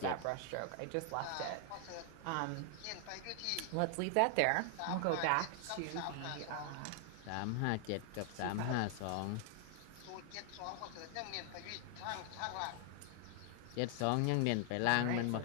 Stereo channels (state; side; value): different; both; correlation 0.00